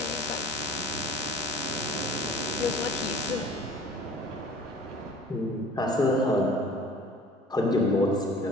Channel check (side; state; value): both; normal; correlation 0.47